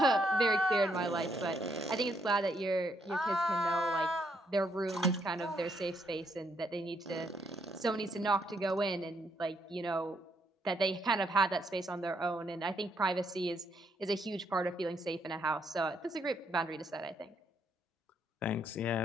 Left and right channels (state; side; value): normal; both; correlation 0.74